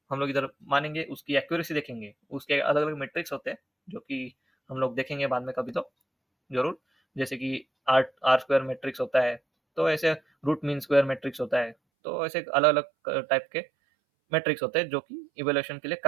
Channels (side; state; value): left; drops out; at 11.8 s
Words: हम लोग इधर मानेंगे, उसकी एक्यूरेसी देखेंगे। उसके अलग अलग मेट्रिक्स होते हैं जो कि हम लोग देखेंगे बाद में कभी तो जरूर। जैसे कि आर आर स्क्वायर मैट्रिक्स होता है, तो ऐसे रूट मीन स्क्वायर मैट्रिक्स होता है। तो ऐसे अलग अलग टाइप के मैट्रिक्स होते हैं जो कि इवेल्युएशन के लिए